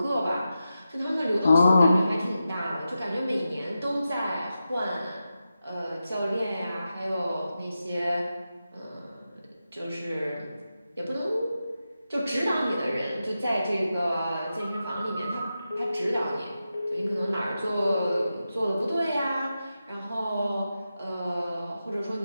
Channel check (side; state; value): both; inverted; correlation -0.90